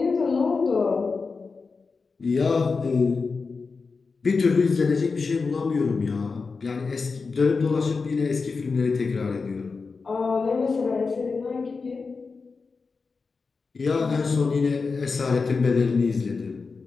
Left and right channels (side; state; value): right; quieter; 4.6 dB